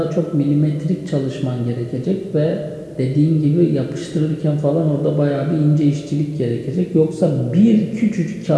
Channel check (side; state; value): both; identical; correlation 1.00